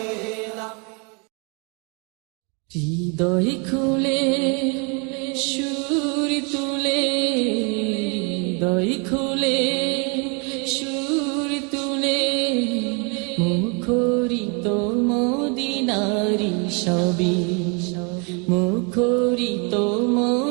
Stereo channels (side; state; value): left; quieter; 34.2 dB